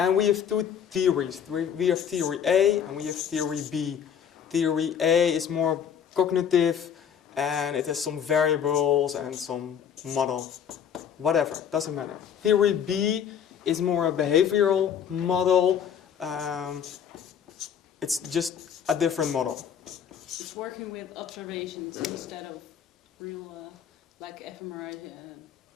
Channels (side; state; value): right; quieter; 8.2 dB